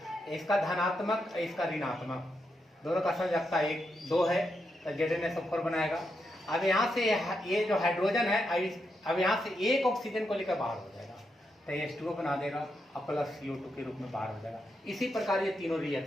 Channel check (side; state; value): both; normal; correlation 0.83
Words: इसका धनात्मक, इसका ऋणात्मक, दोनों का संयोजकता 1-2 है तो ZnSO4 बनाएगा। अब यहाँ से ये जो हाइड्रोजन है, अब यहाँ से एक ऑक्सीजन को लेकर बाहर हो जाएगा तो H2O बना देगा और प्लस CO2 के रूप में बाहर हो जाएगा। इसी प्रकार ये तीनों